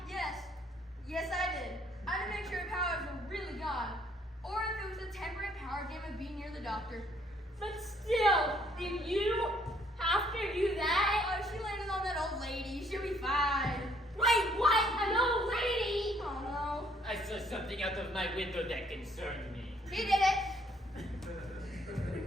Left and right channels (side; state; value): both; normal; correlation 0.65